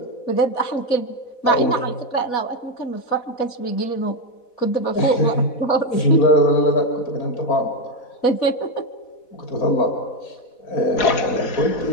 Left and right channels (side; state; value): right; late; 4.1 ms